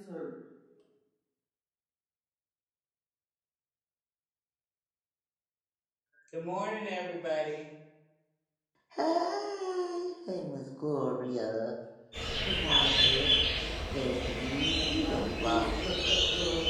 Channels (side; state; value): both; identical; correlation 1.00